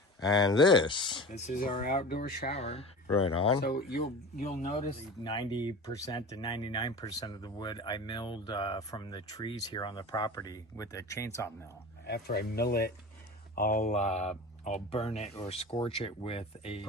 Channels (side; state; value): both; normal; correlation 0.34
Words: And this is our outdoor shower. Right on. So you'll notice 90% to 99% of the wood I milled from the trees here on the property with a chainsaw mill. After I mill it, I'll burn it or scorch it with a